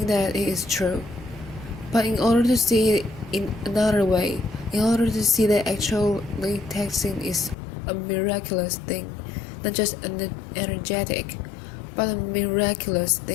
that it is true. But in order to see it in another way, in order to see that actually texting is a miraculous thing, not just an energetic, but a miraculous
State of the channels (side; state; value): right; drops out; at 7.6 s